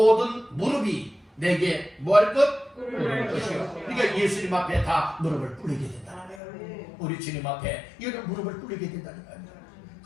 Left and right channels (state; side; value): drops out; right; at 6.4 s